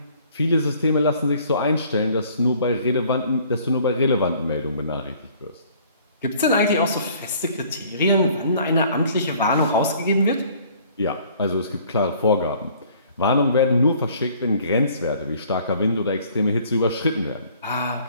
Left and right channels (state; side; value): inverted; both; correlation -0.56